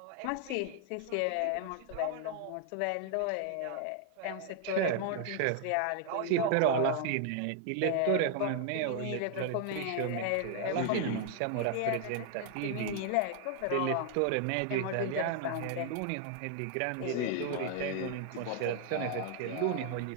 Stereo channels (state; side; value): different; both; correlation 0.00